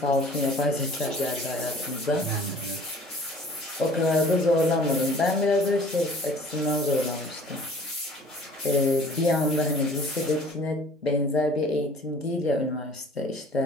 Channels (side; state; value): both; normal; correlation 0.50